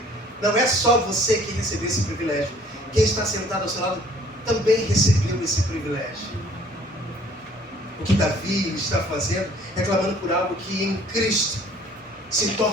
não é só você que recebeu esse privilégio. Quem está sentado ao seu lado também recebeu esse privilégio. O que Davi está fazendo é clamando por algo que em Cristo se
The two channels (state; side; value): normal; both; correlation 0.56